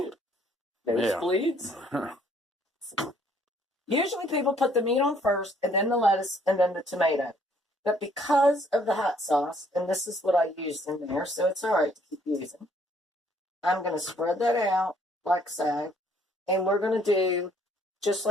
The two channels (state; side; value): normal; both; correlation 0.63